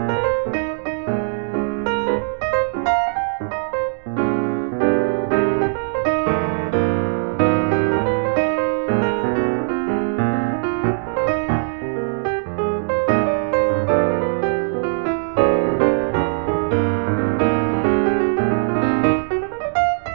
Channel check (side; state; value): left; silent; digital silence